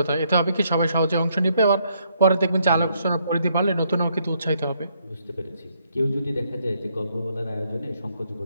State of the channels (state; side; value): inverted; both; correlation -0.72